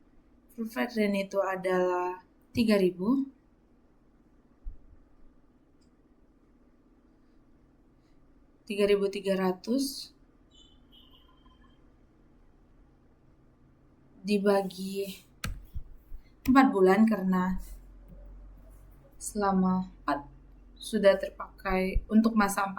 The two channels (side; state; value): both; identical; correlation 1.00